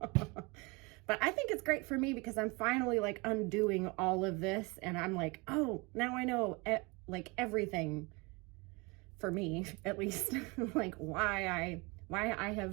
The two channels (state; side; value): quieter; left; 27.3 dB